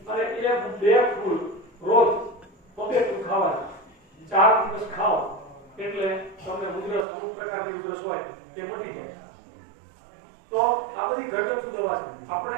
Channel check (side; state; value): left; drops out; at 7.1 s